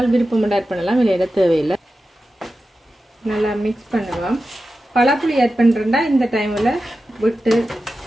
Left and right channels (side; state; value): both; normal; correlation 0.92